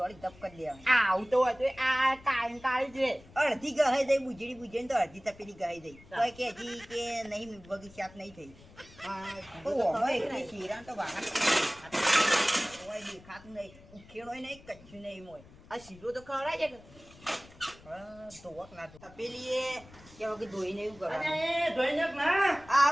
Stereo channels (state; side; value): noise; left; rumble, 22 dB below the sound